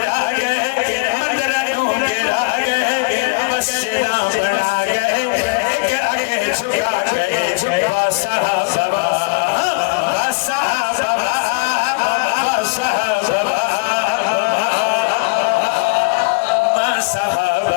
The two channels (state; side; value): quieter; right; 31.0 dB